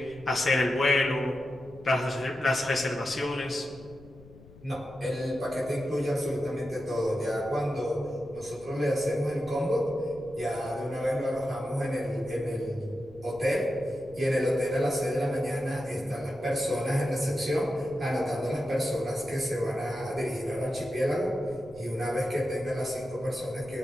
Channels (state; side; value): noise; left; rumble, 20 dB below the sound